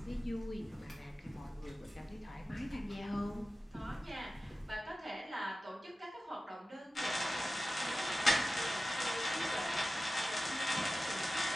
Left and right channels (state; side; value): normal; both; correlation 0.95